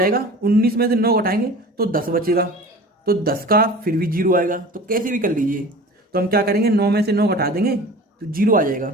19 में से 9 घटाएंगे तो 10 बचेगा, तो 10 का फिर भी 0 आएगा, तो कैसे भी कर लीजिए। तो हम क्या करेंगे, 9 में से 9 घटा देंगे तो 0 आ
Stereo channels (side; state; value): both; normal; correlation 0.39